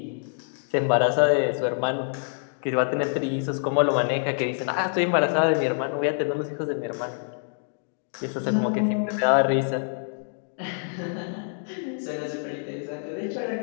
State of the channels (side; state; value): right; silent; digital silence